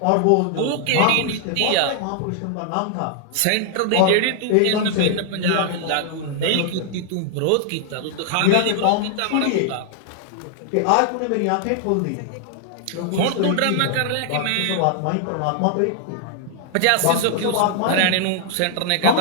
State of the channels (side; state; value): both; different; correlation 0.00